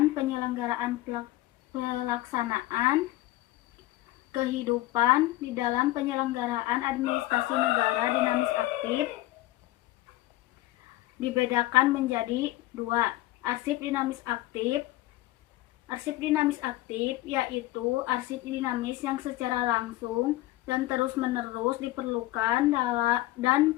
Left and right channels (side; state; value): right; quieter; 17.1 dB